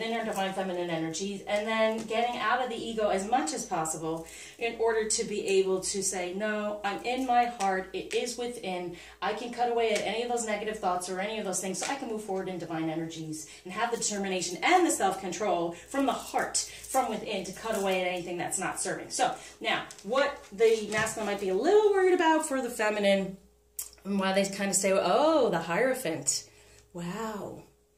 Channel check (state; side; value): identical; both; correlation 1.00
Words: our divine feminine energies, and then getting out of the ego as much as possible in order to be able to say, no, I'm in my heart, it is within, I can cut away at any of those negative thoughts or any of those things so I can move forward in divine energies and have the determination and the self-control from the heart, from within, to cut away at anything that's not serving. So, now, what the masculine might be a little worried about for the feminine, and why they kind of say, oh, the Hierophant. Wow.